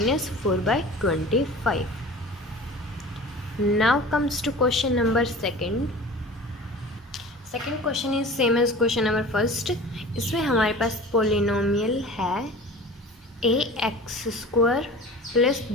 Now comes to question number second. Second question is same as question number first. इसमें हमारे पास पोलिनोमियल है ax² plus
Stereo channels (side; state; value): both; normal; correlation 0.39